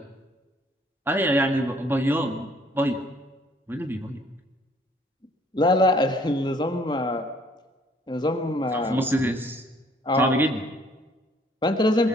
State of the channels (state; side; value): normal; both; correlation 0.61